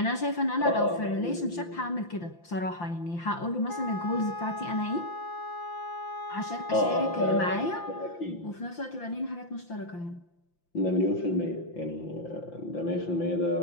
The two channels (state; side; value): late; right; 5.8 ms